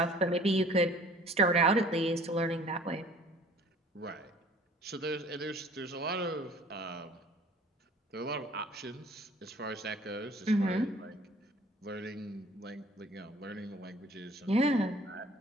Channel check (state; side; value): normal; both; correlation 0.51